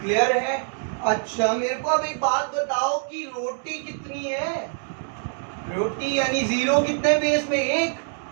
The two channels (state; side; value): silent; left; digital silence